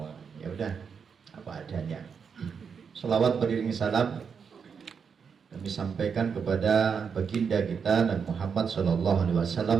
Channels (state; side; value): quieter; left; 6.3 dB